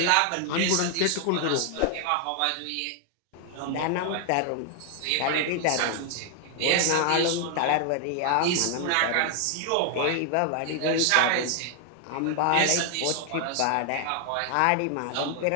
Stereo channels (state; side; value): different; both; correlation 0.00